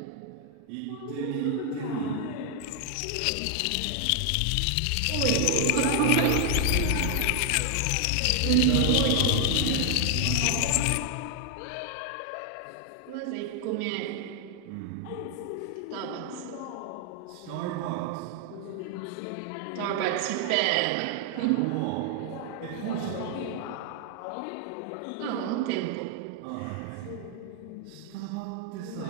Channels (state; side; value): different; both; correlation 0.00